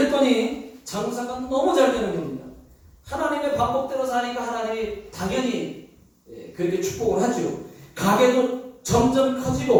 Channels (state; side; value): identical; both; correlation 1.00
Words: 장사가 너무 잘 되는 겁니다. 하나님의 방법대로 사니까 하나님이 당연히 그렇게 축복을 하죠. 가게도 점점